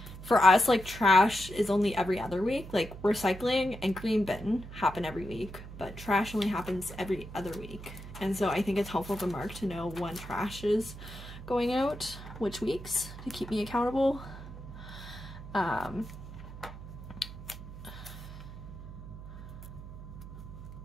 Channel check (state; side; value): noise; right; hum, 13 dB below the sound